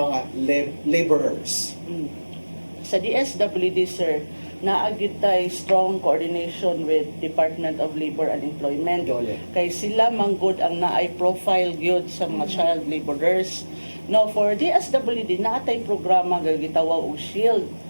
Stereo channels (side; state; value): both; inverted; correlation -1.00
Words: laborers. Sa DSWD, sir, naagid tay strong coordination with Department of Labor and Employment. Dole. Kay sila manggod ang naay profile gyud sa mga child laborers. No, for DSWD naatay programa nga gitawag og SHIELD.